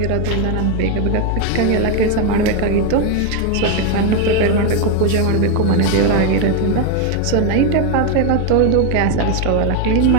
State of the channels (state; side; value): different; both; correlation 0.01